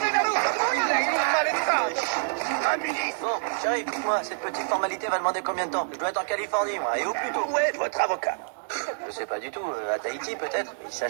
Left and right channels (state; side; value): silent; left; digital silence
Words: Un ministre! Bon, chérie, écoute-moi, cette petite formalité va demander combien de temps? Je dois être en Californie, moi, et au plus tôt. Où est votre avocat? Je sais pas du tout, à Tahiti peut-être? Il